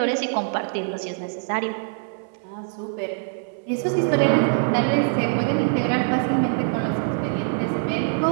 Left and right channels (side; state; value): left; silent; 61 dB below the other